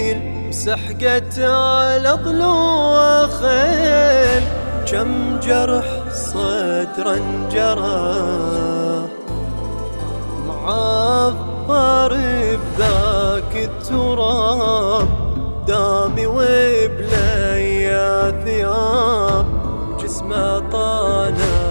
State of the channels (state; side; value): inverted; both; correlation -1.00